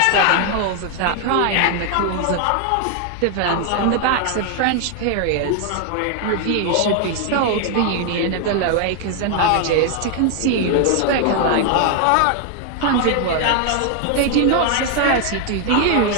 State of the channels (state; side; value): different; both; correlation 0.00